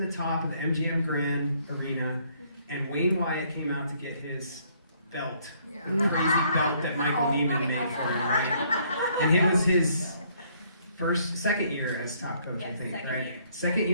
the top of the MGM Grand Arena, and Wayne Wyatt came out to get his belt, the crazy belt that Michael Neiman made for him, right? And it was his second year as top coach, yes, I think, second right? year. Second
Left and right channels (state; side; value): inverted; both; correlation -0.65